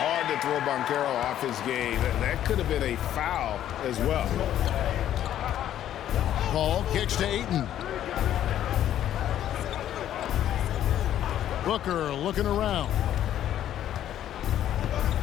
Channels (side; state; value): right; quieter; 11.4 dB